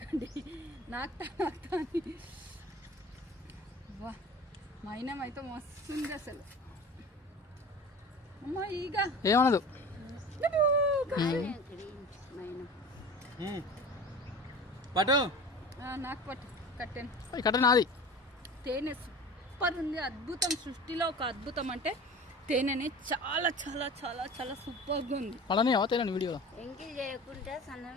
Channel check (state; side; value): normal; both; correlation 0.37